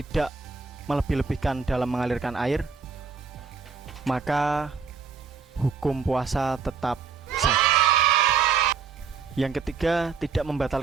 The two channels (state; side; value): quieter; left; 5.6 dB